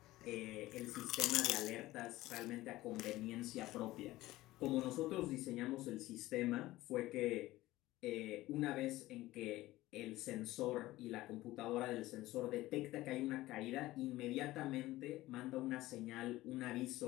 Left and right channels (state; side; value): quieter; right; 17.3 dB